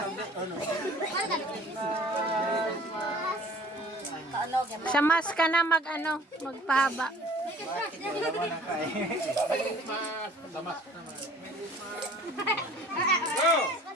Sa mas ka na magpahaba. Go!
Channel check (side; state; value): both; normal; correlation 0.49